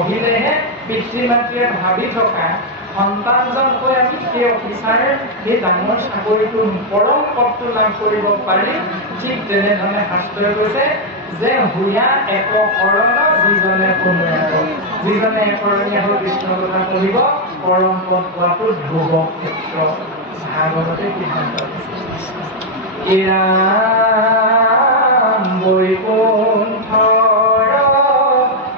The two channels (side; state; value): both; normal; correlation 0.01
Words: পিতৃ মাতৃয়ে ভাবি থকা সন্তানজন হৈ আমি সেই অফিচাৰ সেই ডাঙৰ চাকৰিটো পৰম পদটো লাভ কৰিব পাৰিম। ঠিক তেনেধৰণে শাস্ত্ৰই কৈছে যে হুয়া এক শৰণ যিজনে শুনে, যিজনে একৰণীয়া হৈ কৃষ্ণৰ কথা পঢ়িব পৰম পদ পোৱাটো ধ্ৰুৱ ক্ষেত্ৰ। ভাগৱতে সিদ্ধান্ত এয়া বৈকুণ্ঠৰ